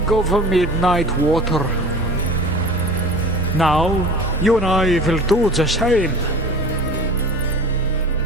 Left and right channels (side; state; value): both; normal; correlation 0.39